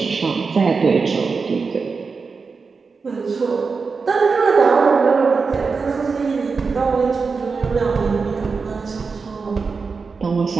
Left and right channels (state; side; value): quieter; left; 4.8 dB